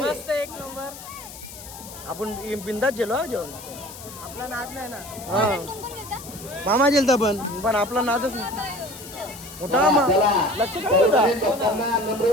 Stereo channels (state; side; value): noise; left; hiss, 15 dB below the sound